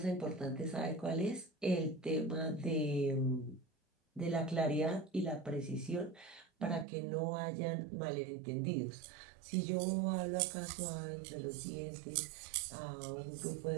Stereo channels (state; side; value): drops out; left; at 6.9 s